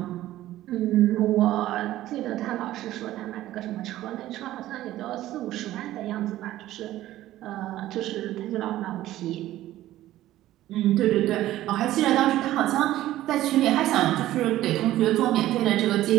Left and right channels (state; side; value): quieter; left; 14.6 dB